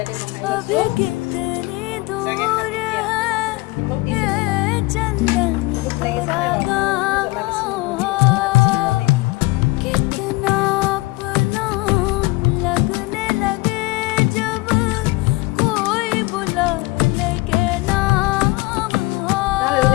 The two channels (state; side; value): quieter; right; 22.7 dB